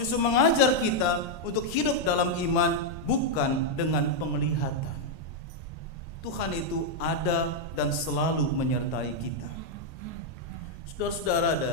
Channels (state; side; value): late; right; 1.8 ms